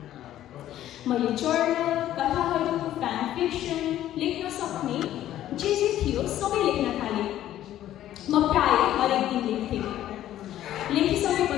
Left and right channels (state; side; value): quieter; right; 12.6 dB